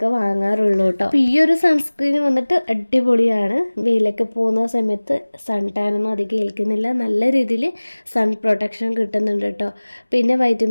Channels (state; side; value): inverted; both; correlation -1.00